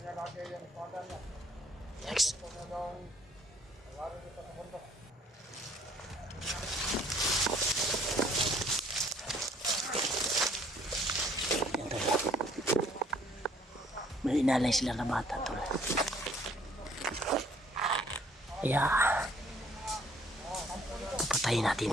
lagi yung espada niya. Next. Ito na daw nalari dito sa bundok. Yan tol. inalay sila na bata tol. Kaya patayin natin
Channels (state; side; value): normal; both; correlation 0.61